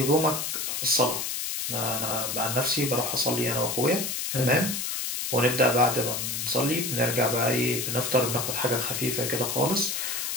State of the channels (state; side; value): noise; left; hiss, 2 dB below the sound